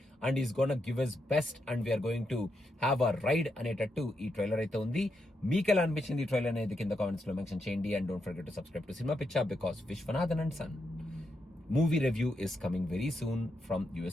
and is gonna give his best, and we are going to have a ride అనేటట్టు ఈ trailer అయితే ఉంది. మీకు ఎలా అనిపించింది ఈ trailer అనేది కింద కామెంట్స్ లో మెన్షన్ చేయండి. And don't forget to subscribe to cinema Pichcha, because Viswanathan and son movie review is coming very soon from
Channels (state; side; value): normal; both; correlation 0.82